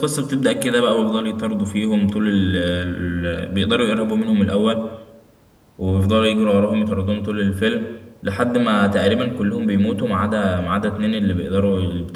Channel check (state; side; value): identical; both; correlation 1.00